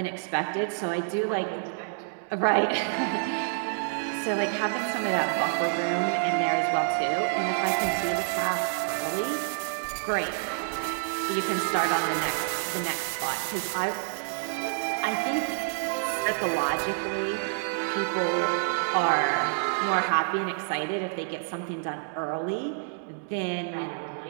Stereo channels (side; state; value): left; silent; digital silence